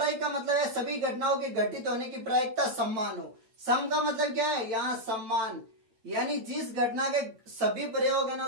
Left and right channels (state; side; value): late; left; 9.0 ms